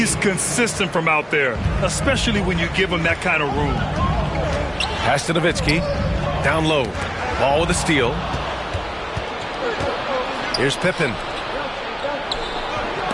consistent from out there, especially when you give him that kind of room. Pass to Nowitzki. Down low. Ball with a steal. Here's Pippen.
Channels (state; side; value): identical; both; correlation 1.00